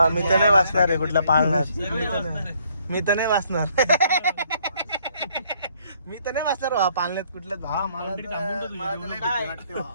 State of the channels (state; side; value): inverted; both; correlation -0.66